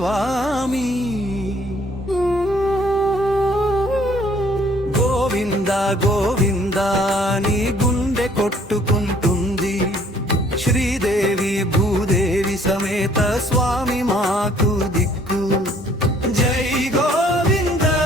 గోవింద గోవింద నీ గుండె కొట్టుకుంటుంది, శ్రీదేవి భూదేవి సమేత స్వామి మాకు దిక్కు. జై గోవింద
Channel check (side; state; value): both; normal; correlation 0.60